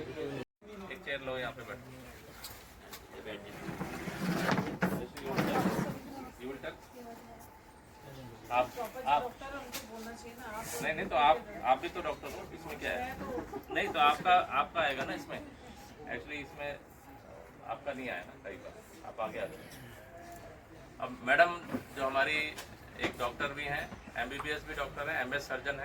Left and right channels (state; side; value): identical; both; correlation 1.00